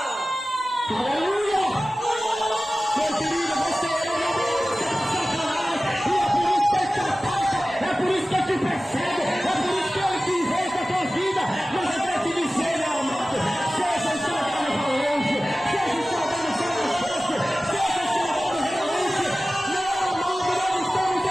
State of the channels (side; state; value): both; normal; correlation 0.96